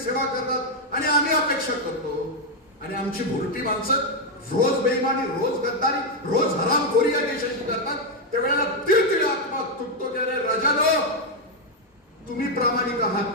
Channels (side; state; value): both; normal; correlation 0.02